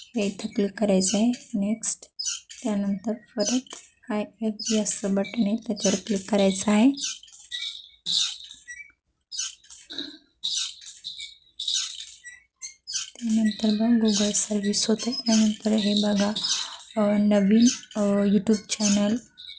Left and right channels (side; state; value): both; identical; correlation 1.00